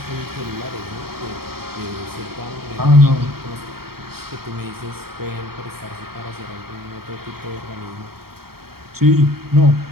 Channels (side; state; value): left; late; 0.95 ms